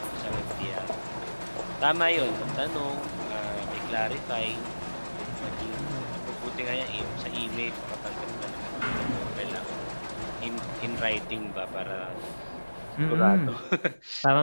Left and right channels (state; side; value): inverted; both; correlation -1.00